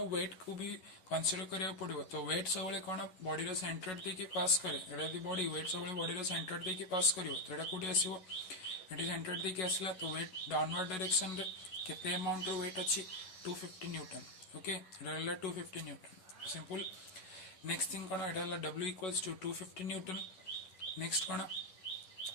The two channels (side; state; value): right; late; 11 ms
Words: वेट को भी कंसीडर करिया पड़ो। तो वेट सब कौन बॉडी रो सेंटर देकी पास करे एटा बॉडी वेट सब बॉडी रो सेंटर देकी पास करिवो तो एटा कोठी आसीबो एटी सेंटर देकी आसला तो वेट डाउनवर्ड डायरेक्शन रे केते अमाउंट रो वेट अछि 250 न्यूटन। ओके, एटा 250 न्यूटन सिंपल। नेक्स्ट थिंग कौन एटा W equals to 250 newton. Next कौन